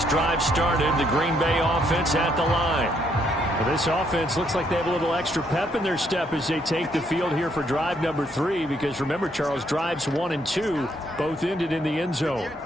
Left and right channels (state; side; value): normal; both; correlation 0.72